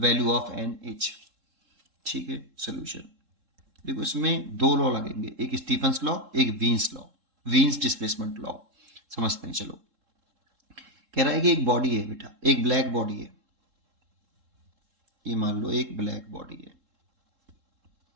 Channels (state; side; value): late; left; 3.7 ms